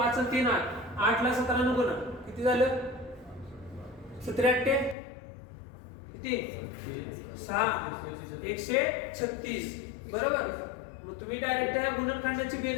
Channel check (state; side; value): drops out; right; at 5.0 s